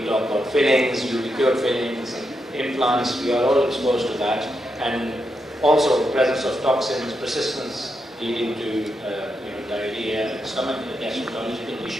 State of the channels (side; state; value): both; normal; correlation 0.84